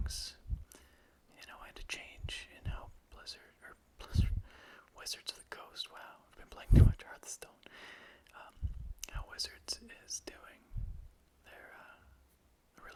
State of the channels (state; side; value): identical; both; correlation 1.00